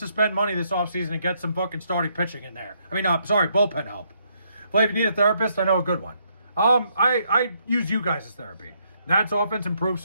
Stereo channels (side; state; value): both; inverted; correlation -0.73